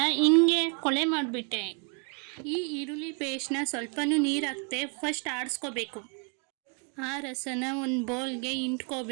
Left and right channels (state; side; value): quieter; left; 36.9 dB